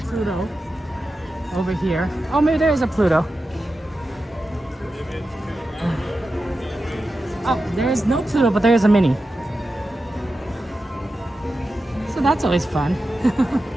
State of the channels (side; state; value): both; normal; correlation 0.91